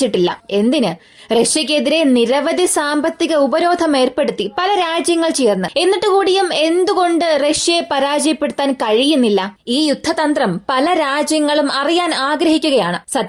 എന്തിന്? റഷ്യക്കെതിരെ നിരവധി സാമ്പത്തിക ഉപരോധം ഏർപ്പെടുത്തി പല രാജ്യങ്ങൾ ചേർന്ന്. എന്നിട്ട് കൂടിയും എന്തുകൊണ്ട് റഷ്യയെ പരാജയപ്പെടുത്താൻ കഴിയുന്നില്ല? ഈ യുദ്ധതന്ത്രം പല രാജ്യങ്ങളും അറിയാൻ ആഗ്രഹിക്കുകയാണ്.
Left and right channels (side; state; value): both; identical; correlation 1.00